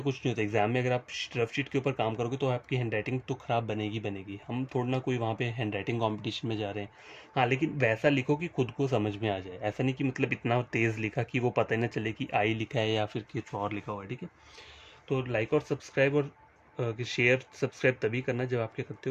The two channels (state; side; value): identical; both; correlation 1.00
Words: कुछ नहीं होता, एग्जाम में अगर आप रफ शीट के ऊपर काम करोगे तो आपकी हैंड राइटिंग तो ख़राब बनेगी बनेगी। हम थोड़ा ना कोई वहाँ पे हैंड राइटिंग कॉम्पिटिशन में जा रहे हैं। हाँ, लेकिन वैसा लिखो कि खुद को समझ में आ जाए, ऐसा नहीं कि मतलब इतना तेज़ लिखा कि वो पता ही ना चले कि आई लिखा है या फिर कुछ और लिखा हुआ है, ठीक है। तो लाइक और सब्सक्राइब और शेयर सब्सक्राइब तभी करना जब आप क्या करते